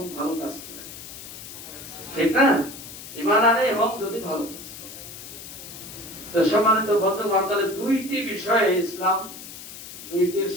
ভালো কাজ করে, ঠিক না? ঈমান আনে এবং যদি ভালো কাজ করে। তো সম্মানিত বন্ধুগণ, তাহলে দুইটি বিষয়ে ইসলাম, দুইটির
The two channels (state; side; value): noise; left; hiss, 13 dB below the sound